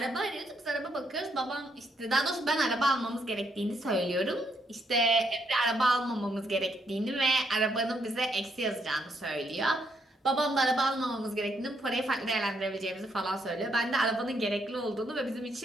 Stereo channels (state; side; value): normal; both; correlation 0.75